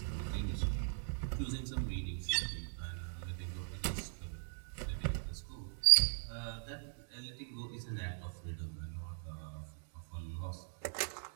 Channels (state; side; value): silent; left; digital silence